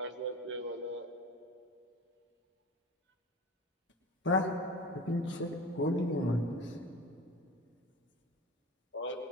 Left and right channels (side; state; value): both; normal; correlation 0.34